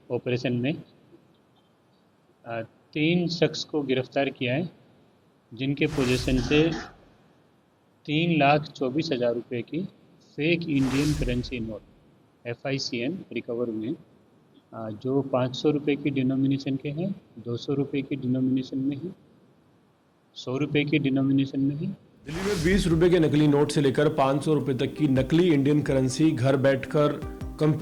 ऑपरेशन में 3 शख्स को गिरफ्तार किया है, जिनके पोजीशन से 3,24,000 रुपये की fake Indian currency note FICN recover हुए हैं, जो 500 रुपये की डिनोमिनेशन के हैं, 200 रुपये की डिनोमिनेशन में हैं, 100 रुपये की डिनोमिनेशन में हैं। दिल्ली में 20 रुपए के नकली नोट से लेकर 500 रुपए तक की नकली इंडियन करेंसी घर बैठकर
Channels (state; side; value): identical; both; correlation 1.00